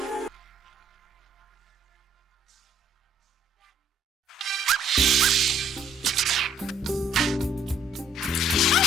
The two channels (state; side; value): normal; both; correlation 0.61